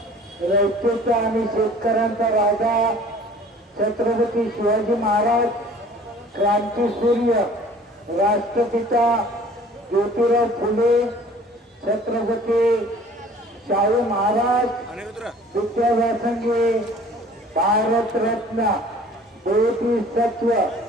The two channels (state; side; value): normal; both; correlation 0.49